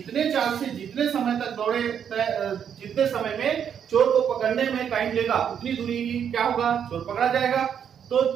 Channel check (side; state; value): left; quieter; 8.3 dB